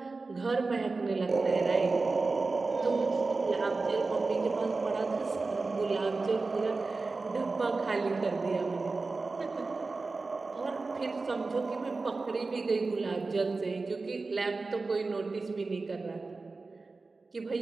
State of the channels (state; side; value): quieter; left; 3.8 dB